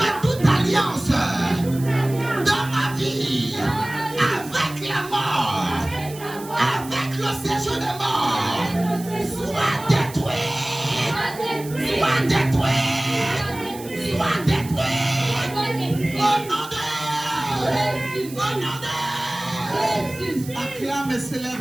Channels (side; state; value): right; noise; hiss, 16 dB below the sound